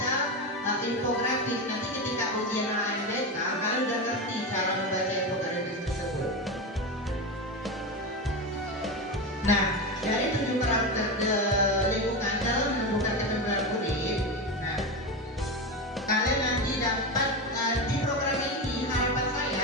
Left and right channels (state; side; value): normal; both; correlation 0.18